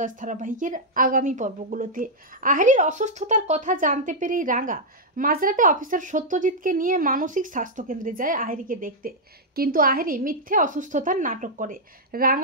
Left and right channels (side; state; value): both; normal; correlation -0.05